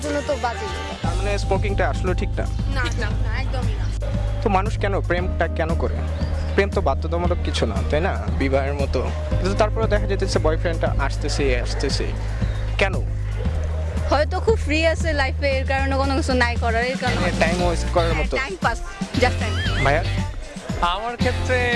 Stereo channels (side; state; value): both; identical; correlation 1.00